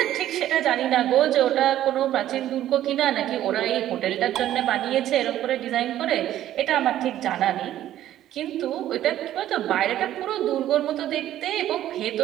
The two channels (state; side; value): quieter; left; 12.6 dB